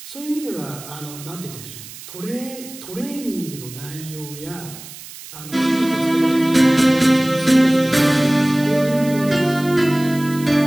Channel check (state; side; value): noise; right; hiss, 15 dB below the sound